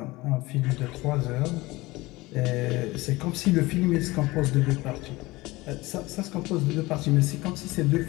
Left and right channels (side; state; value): right; quieter; 20.8 dB